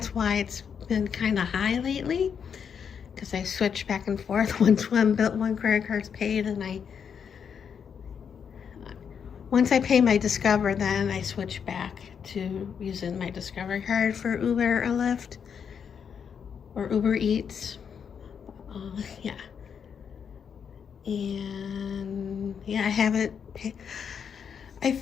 why it's been kind of high lately, because I switch back and forth. Once one credit card's paid, and once I pay my Discover, then I switch back to using my Discover card for Uber or Lyft or Uber Eats. Yeah. And yeah, I haven't paid. I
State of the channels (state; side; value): quieter; right; 7.2 dB